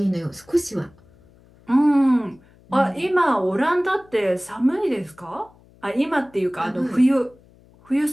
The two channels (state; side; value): noise; left; hum, 28 dB below the sound